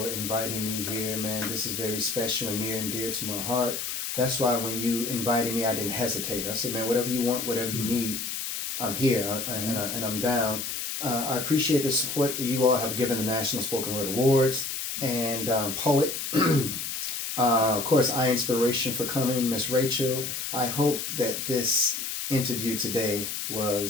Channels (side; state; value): left; noise; hiss, 4 dB below the sound